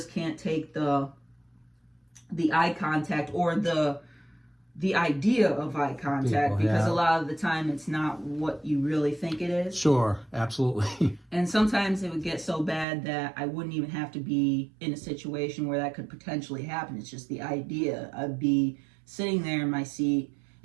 can't take the eye contact or the idea of eye contact, because a lot of the time it's not what you really think it is. Sure, absolutely. And sometimes it would get so bad that I wouldn't even have to be in a situation where that could potentially happen. It's just the idea. I'd be sitting there in my seat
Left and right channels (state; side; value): drops out; left; at 12.9 s